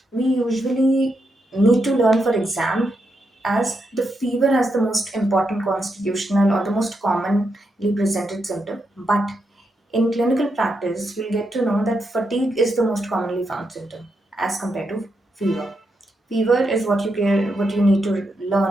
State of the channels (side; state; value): both; normal; correlation 0.83